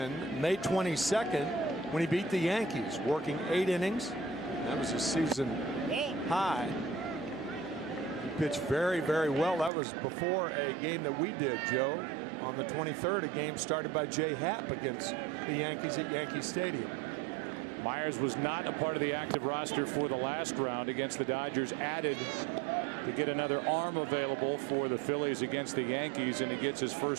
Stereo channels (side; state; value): left; drops out; at 9.7 s